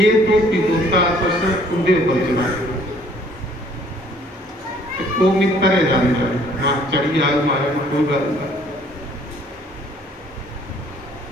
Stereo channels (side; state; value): both; normal; correlation 0.59